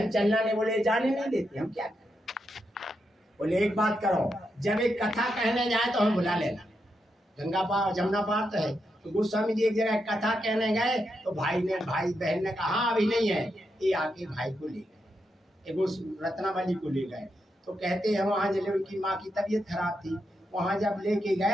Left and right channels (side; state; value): both; normal; correlation 0.84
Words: चलना, नहीं, बोले जाने नहीं देते, हम क्या करें। बोले एक बात करो, जब एक कथा कहने जाए तो हमें बुला लेना, गंगा पार जमुना पार तो है। तो गोस्वामी जी एक जगह कथा कहने गए तो भाई बहन ने कहा अभी नहीं है, ये आके भाई को ले गए, रत्नावली को ले गए। तो कहते हैं वहां जब उनकी माँ की तबीयत खराब थी, वहां जब लेके